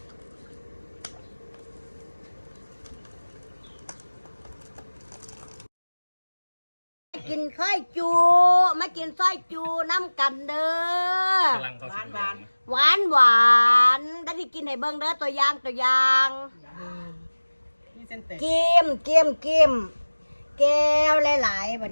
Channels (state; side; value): inverted; both; correlation -1.00